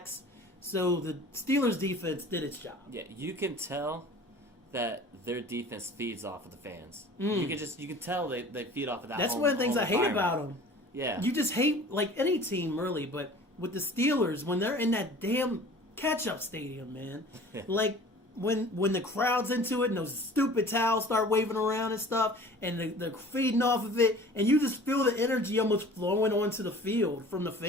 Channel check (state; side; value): normal; both; correlation 0.45